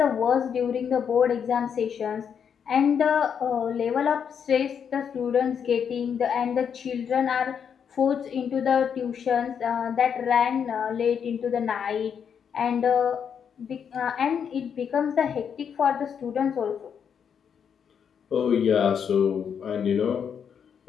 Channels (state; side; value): quieter; right; 7.5 dB